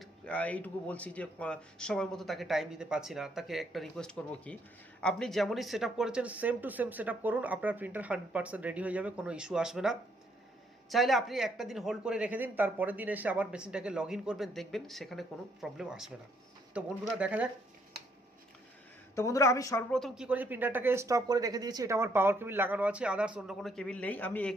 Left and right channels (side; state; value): both; normal; correlation 0.70